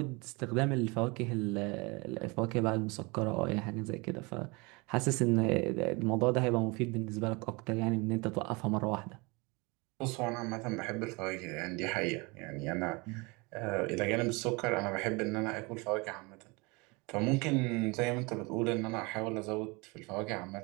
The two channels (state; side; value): quieter; left; 27.1 dB